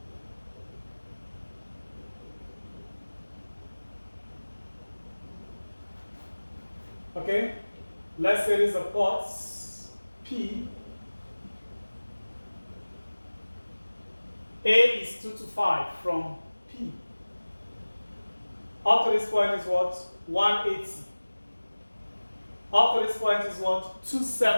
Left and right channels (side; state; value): both; inverted; correlation -1.00